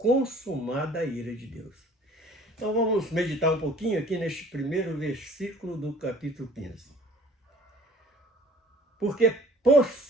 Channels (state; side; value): normal; both; correlation 0.51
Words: a ira de Deus. Então vamos meditar um pouquinho aqui neste primeiro versículo do capítulo 15. Porque, por